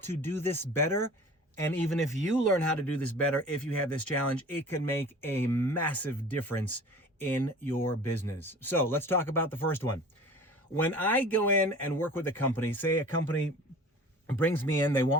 do this better, and even if you learn how to do this better, if you have this challenge, it can make a massive difference in your business. So let's talk about the first one. When I go in and work with a company, say a company brings me in, they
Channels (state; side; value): normal; both; correlation 0.42